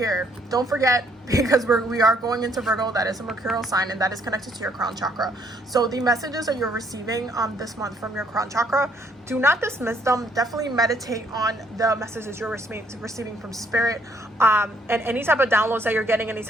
Don't forget, because we are going into Virgo. That is a mercurial sign, and that is connected to your crown chakra. So the messages that you're receiving this month from your crown chakra, do not dismiss them. Definitely meditate on the messages you're receiving from spirit, and any type of downloads that you're getting, any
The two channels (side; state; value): both; normal; correlation 0.67